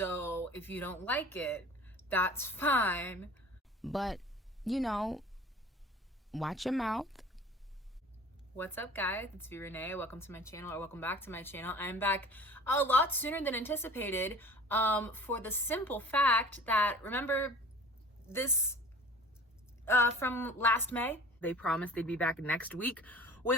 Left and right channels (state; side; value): normal; both; correlation 0.44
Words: if you don't like it, that's fine. But, you know, watch your mouth. What's up, guys? It's V Renee. Welcome to my channel, or welcome back to my channel. I'm back a lot sooner than anticipated, for the simple fact that, remember this from last May? They promised they'd be back next week